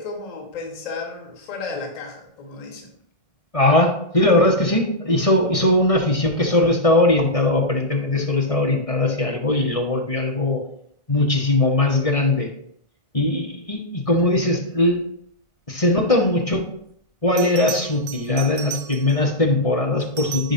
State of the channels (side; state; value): right; late; 1.6 ms